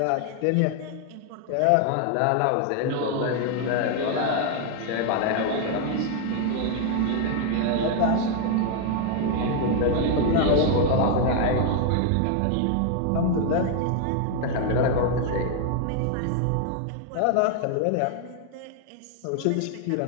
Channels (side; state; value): both; different; correlation 0.00